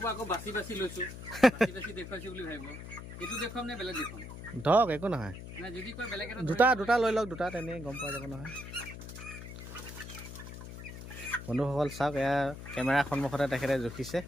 আকৌ বাচি বাচি লৈছোঁ দেখুৱাইছোঁ বুলি ভাবিব এইটো দেখুৱাম নে বেলেগ দেখুৱাম ধৰক একো নহয় যদি কয় বেলেগ দুটা লৈ লওক দুটা তেনেই গম পোৱা যাব নহয় বন্ধুসকল চাওক এয়া কেমেৰাৰ সন্মুখতে তেখেতে জুখিছে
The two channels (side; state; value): left; noise; hum, 11 dB below the sound